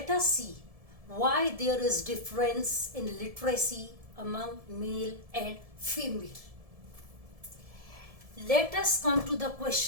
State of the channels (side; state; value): left; late; 1.7 ms